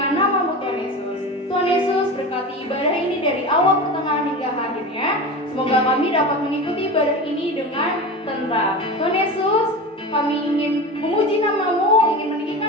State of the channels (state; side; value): normal; both; correlation 0.28